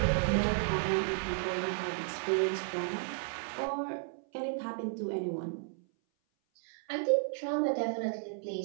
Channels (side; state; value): left; silent; 55 dB below the other